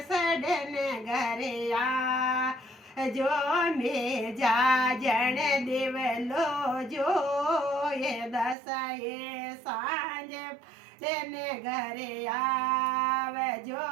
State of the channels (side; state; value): left; drops out; at 8.6 s